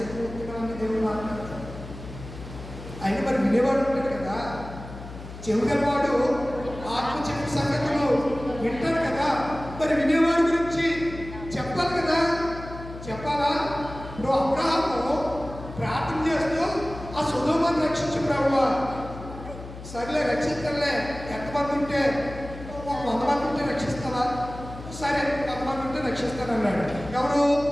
దేవుడు మాట్లాడతాడు. ఆయన మరి వినేవాడు ఉంటాడు కదా, చెవుగలవాడు ఆత్మ చెప్పు సంగతులు వింటాడు కదా, మరి వినేవాడి గురించి చెప్పాలి కదా. చెప్పాలా? ఇప్పుడు అబ్రహాము ప్రార్థన చేస్తూ ఆ సొదొమను రక్షించు ప్రభువా, సరేలే రక్షిస్తానులే, ఎంతమంది ఉంటే 100 మంది ఉంటే రక్షిస్తావా? సరే 100 మంది ఉంటే రక్షిస్తాను అన్నాడు. ఎవరు?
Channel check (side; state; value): left; noise; hum, 13 dB below the sound